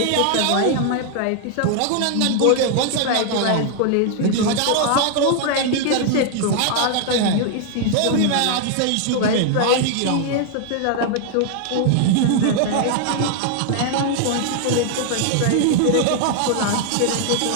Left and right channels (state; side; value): different; both; correlation 0.00